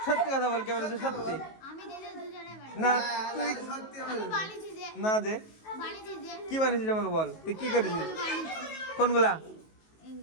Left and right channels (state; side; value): late; right; 19 ms